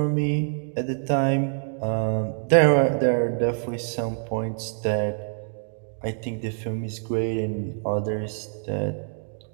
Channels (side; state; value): left; silent; 61 dB below the other